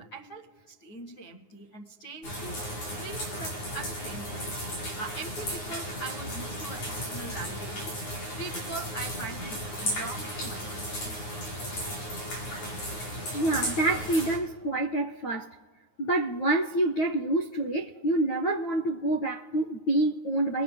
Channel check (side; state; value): right; late; 9.5 ms